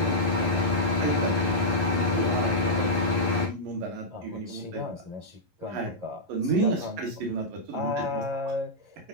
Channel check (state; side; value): late; left; 11 ms